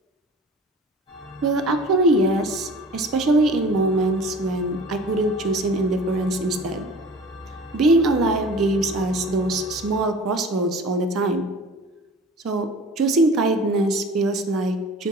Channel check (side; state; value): both; normal; correlation 0.42